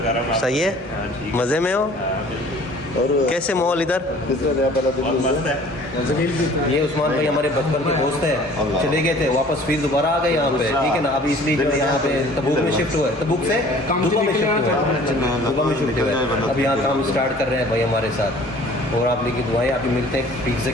सही है, मज़े में हो? और कैसे माहौल इधर? ये उस्मान भाई हमारे बचपन के दोस्त हैं, चले गए थे वापस फिर दोबारा आ गए यहाँ पे, ठीक है ना। अभी इसलिए जो यहाँ पे तबूक में शिफ्ट हुआ है, तबूक से दुबा में शिफ्ट हुआ है, दुबा में शिफ्ट हुआ है। अभी यहाँ काम स्टार्ट कर रहे हैं भाई हमारे साथ, और आप लोग की दुआएं। अभी मिलते हैं पिज़्ज़ा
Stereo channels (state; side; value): normal; both; correlation 0.50